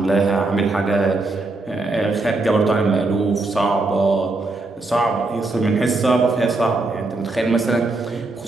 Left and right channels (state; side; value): quieter; left; 3.2 dB